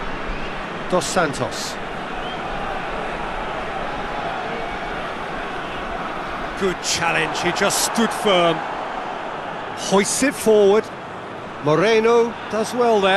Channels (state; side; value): identical; both; correlation 1.00